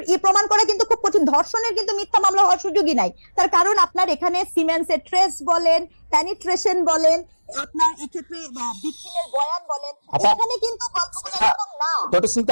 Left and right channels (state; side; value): inverted; both; correlation -1.00